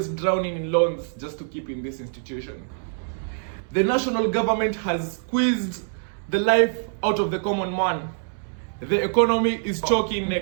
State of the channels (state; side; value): silent; left; 62 dB below the other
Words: drowning in loans just to keep in this institution. The national government has squeezed the life out of the common man. The economy is choking